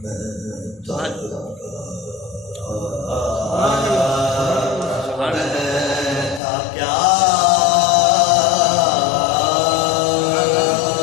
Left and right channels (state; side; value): drops out; right; at 6.4 s